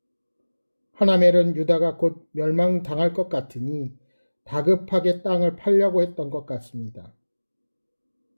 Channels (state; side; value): inverted; both; correlation -1.00